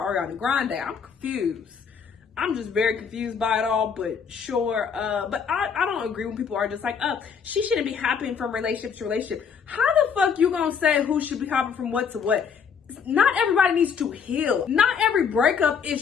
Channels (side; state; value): right; quieter; 6.5 dB